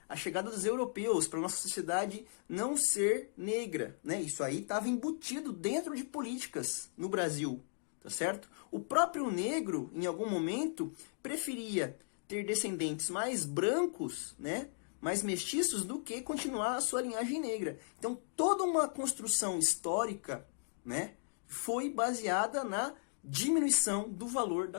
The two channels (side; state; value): right; silent; digital silence